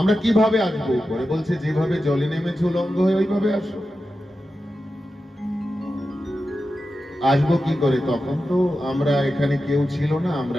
কিভাবে আসবো উপরে? বলছে যেভাবে জলে নেমেছে উলঙ্গ হয়ে, ওইভাবে আসো। আসবো কি করে? তখন তো আমরা এখানে কেউ ছিল না,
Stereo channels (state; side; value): normal; both; correlation 0.91